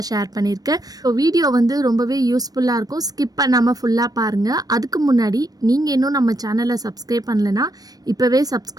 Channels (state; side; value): late; left; 0.18 ms